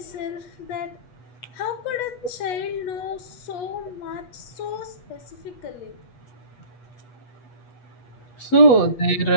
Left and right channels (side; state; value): right; late; 8.3 ms